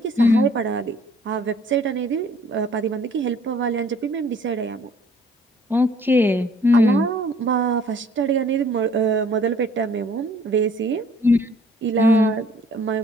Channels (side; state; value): both; normal; correlation 0.57